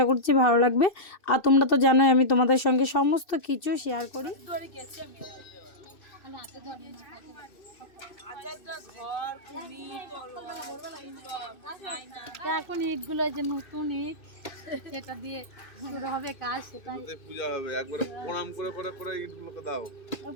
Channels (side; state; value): right; late; 2.6 ms